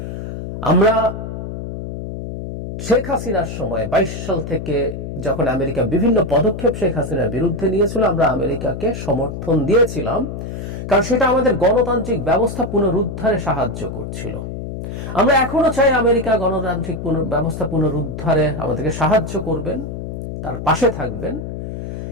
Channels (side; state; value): left; noise; hum, 7 dB below the sound